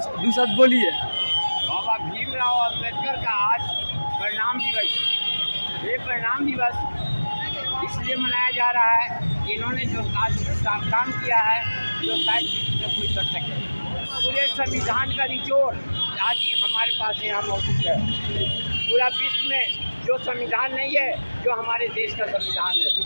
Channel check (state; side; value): inverted; both; correlation -1.00